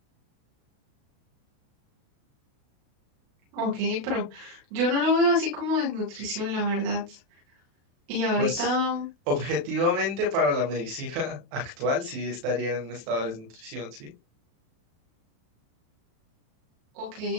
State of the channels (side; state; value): left; late; 36 ms